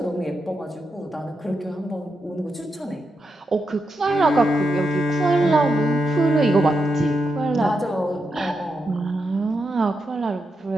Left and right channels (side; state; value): both; normal; correlation 0.85